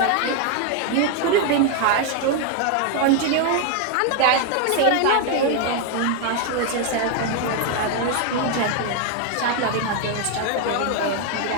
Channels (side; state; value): both; different; correlation 0.01